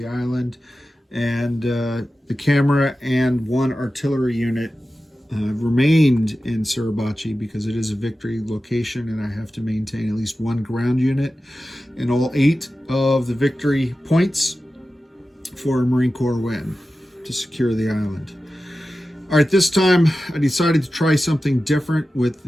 island. And the camera and one artillery unit remained in Suribachi because it is a victory location, and I have to maintain at least one ground unit in all 8 of the victory points for a Marine Corps win to secure the island. All right, this time I decided to try something different with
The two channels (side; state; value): both; normal; correlation 0.94